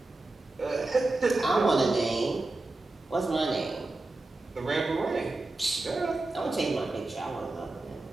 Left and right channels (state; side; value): quieter; left; 3.1 dB